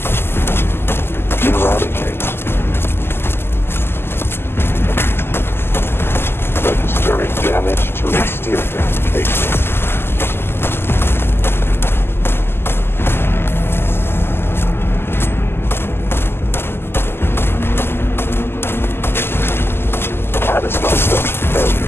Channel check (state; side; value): late; right; 0.11 ms